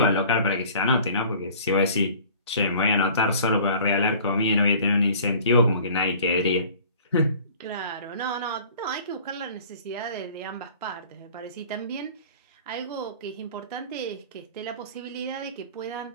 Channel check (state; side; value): inverted; both; correlation -0.48